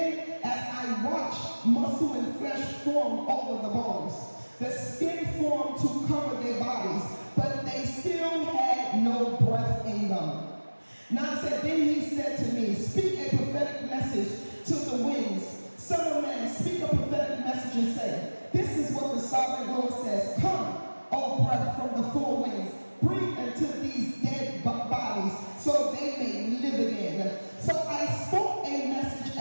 as I watched, muscle and flesh formed over the bones. The skin formed to cover their bodies, but they still had no breath in them. 9 said, then he said to me, speak a prophetic message to the winds. Son of man, speak a prophetic message and say, this is what the sovereign Lord says. Come, O breath from the four winds, breathe into these dead bodies so they may live again. So I spoke a message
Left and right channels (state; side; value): inverted; both; correlation -1.00